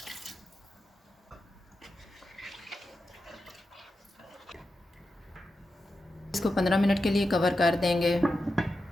इसको 15 मिनट के लिए कवर कर देंगे।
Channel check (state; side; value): normal; both; correlation 0.90